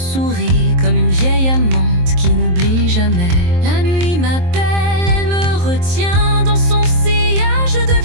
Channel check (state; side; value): late; left; 23 ms